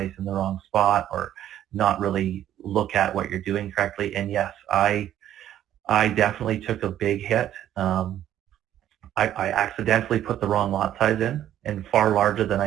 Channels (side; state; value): left; quieter; 11.5 dB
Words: in the wrong spot or not really look at what you're doing correctly. And yes, I definitely took a big hit. I accidentally put the wrong lot size in and far larger than